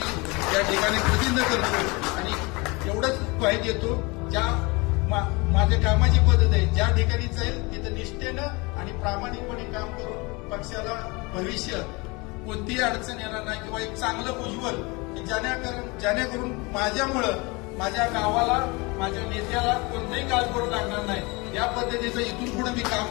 या ठिकाणी प्रतिनिधित्व करतो आणि एवढंच ग्वाही देतो, ज्या माझ्या कामाची पद्धत आहे, ज्या ठिकाणी जाईल तिथं निष्ठेनं आणि प्रामाणिकपणे काम करून पक्षाला भविष्य कोणतीही अडचण येणार नाही किंवा एक चांगलं उज्ज्वल जेणेकरून माझ्यामुळं माझ्या गावाला, माझ्या नेत्याला कोणताही काळ करू लागणार नाही, या पद्धतीचं इथून पुढे मी काम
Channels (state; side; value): quieter; right; 26.5 dB